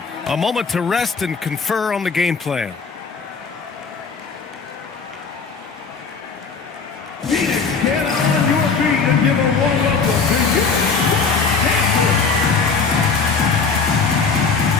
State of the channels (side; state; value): right; quieter; 5.0 dB